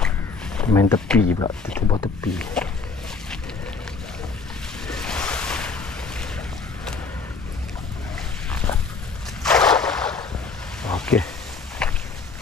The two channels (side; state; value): right; quieter; 4.5 dB